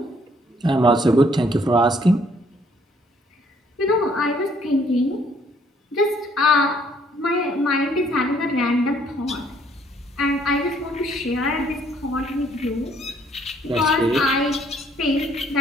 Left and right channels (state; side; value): normal; both; correlation 0.64